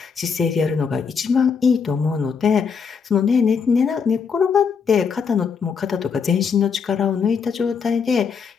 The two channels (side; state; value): right; quieter; 6.0 dB